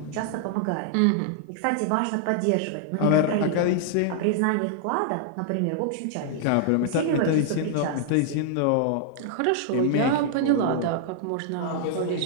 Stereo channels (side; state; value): both; different; correlation -0.01